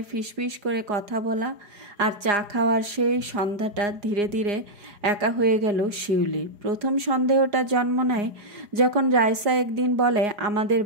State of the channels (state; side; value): late; left; 4.9 ms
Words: ফিসফিস করে কথা বলা, আর চা খাওয়ার সেই সন্ধ্যাটা ধীরে ধীরে একা হয়ে গেল শিউলি। প্রথম সন্দেহটা জন্ম নেয় যখন রাইসা একদিন বলে, আমাদের